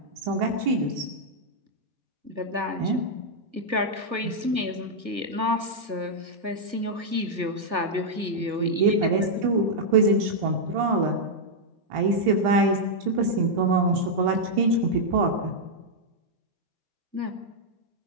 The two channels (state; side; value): late; left; 1.5 ms